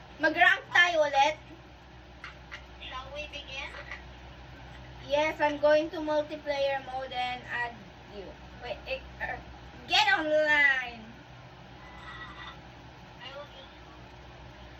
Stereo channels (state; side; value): identical; both; correlation 1.00